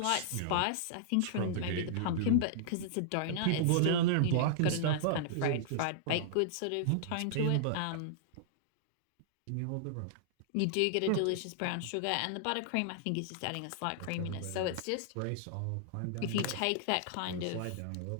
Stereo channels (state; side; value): different; both; correlation -0.01